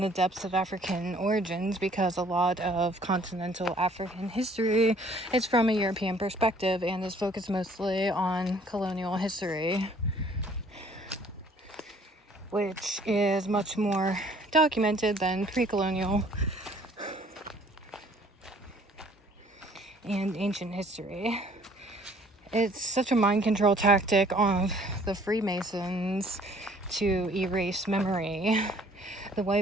the depths of African origins because a lot of continental African history is from a European perspective and is focused mostly on colonial history, which is much more documented than pre-colonial and ancient history. It's such a mind control tactic of the Freemasons to erase memory. The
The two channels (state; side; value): normal; both; correlation 0.58